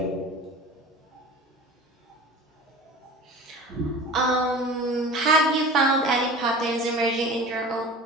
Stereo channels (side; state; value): both; normal; correlation 0.38